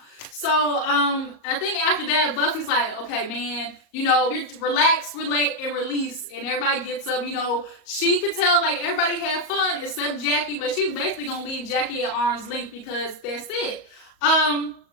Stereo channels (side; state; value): right; late; 38 ms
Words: So, I think after that, Buffy's like, okay, man, you know, you relax, relate, and release. And everybody gets up, you know. She could tell, like, everybody had fun except Jackie. But she's basically going to leave Jackie at arm's length because that's it. And